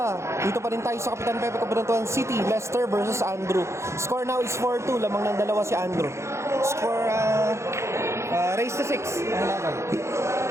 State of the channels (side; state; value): left; late; 0.14 ms